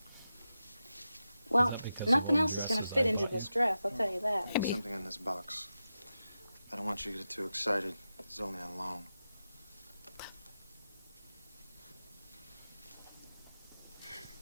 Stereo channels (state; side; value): inverted; both; correlation -0.91